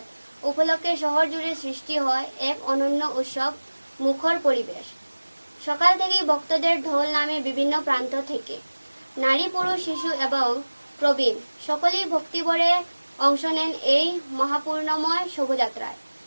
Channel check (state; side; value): inverted; both; correlation -1.00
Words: উপলক্ষে শহর জুড়ে সৃষ্টি হয় এক অনন্য উৎসব মুখর পরিবেশ। সকাল থেকেই ভক্তদের ঢোল নামে বিভিন্ন প্রান্ত থেকে। নারী, পুরুষ, শিশু এবং প্রবীণ সকলেই ভক্তিভরে অংশ নেন এই মহাপূর্ণময় শোভাযাত্রায়।